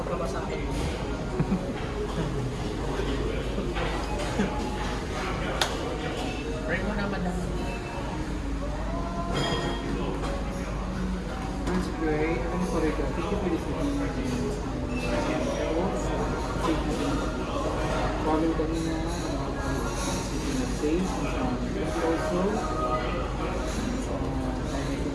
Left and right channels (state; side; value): identical; both; correlation 1.00